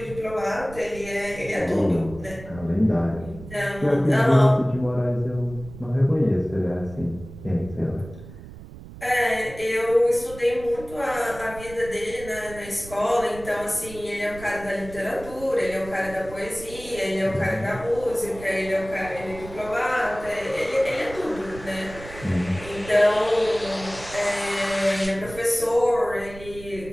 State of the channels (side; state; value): right; noise; rumble, 15 dB below the sound